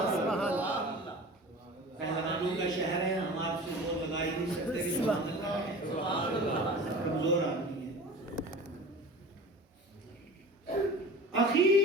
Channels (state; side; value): normal; both; correlation 0.38